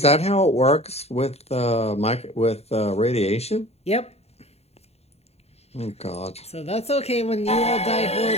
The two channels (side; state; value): right; late; 0.30 ms